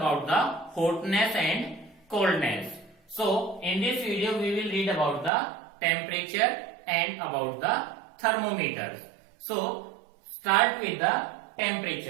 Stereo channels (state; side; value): drops out; left; at 5.3 s